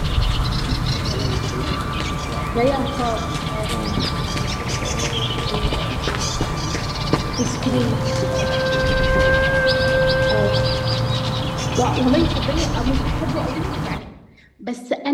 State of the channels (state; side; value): identical; both; correlation 1.00